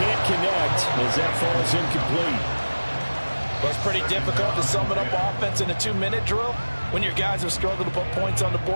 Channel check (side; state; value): both; inverted; correlation -1.00